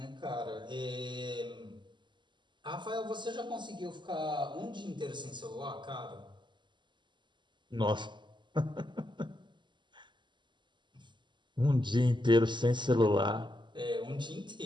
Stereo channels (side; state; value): left; late; 0.22 ms